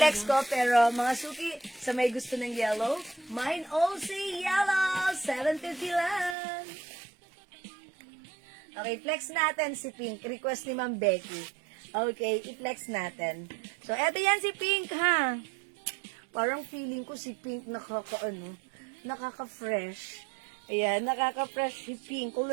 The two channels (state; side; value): drops out; left; at 6.4 s